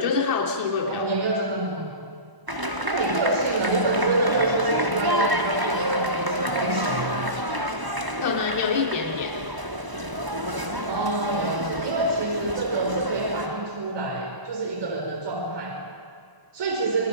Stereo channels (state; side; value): late; left; 1.0 ms